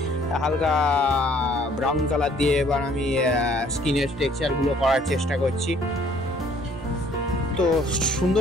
হালকা ব্রাউন কালার দিয়ে এবার আমি স্কিনের টেক্সচারগুলো করার চেষ্টা করছি। তো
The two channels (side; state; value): both; normal; correlation 0.59